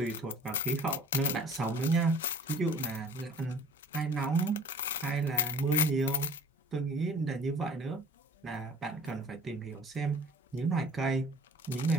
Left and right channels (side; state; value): both; normal; correlation 0.48